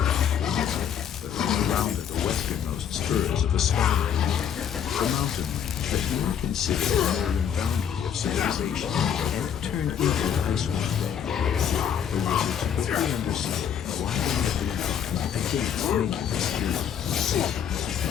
But when they rounded the westernmost spurs of the Sky Range, the mountain range that you were considered the northern boundary of civilization, and turned into Icewind Dale, the wizards quickly understood why they had been against making this journey.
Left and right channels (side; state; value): right; quieter; 8.5 dB